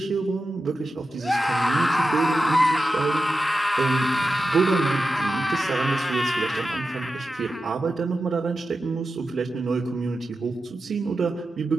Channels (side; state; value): both; normal; correlation 0.92